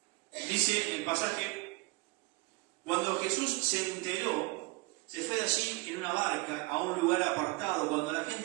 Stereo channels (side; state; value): left; quieter; 24.4 dB